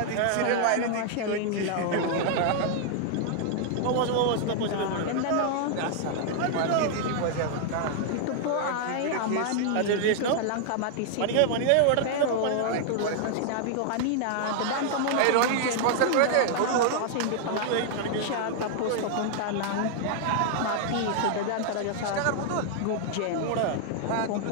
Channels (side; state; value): both; different; correlation -0.01